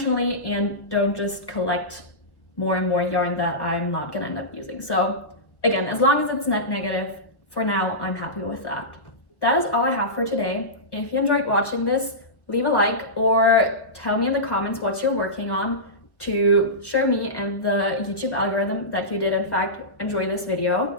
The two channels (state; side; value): late; right; 1.3 ms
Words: and don't just collect more and more yarn that I'm not gonna end up using. So again, as long as it's net negative, for now, I'm happy with that. That is all I have for today. If you enjoyed watching this, leave a like or tell me in the comments what you're working on to show me and the YouTube algorithm that you did in fact enjoy this video.